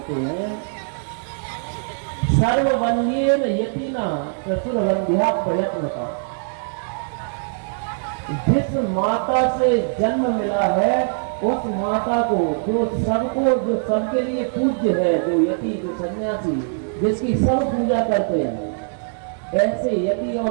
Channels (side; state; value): left; silent; digital silence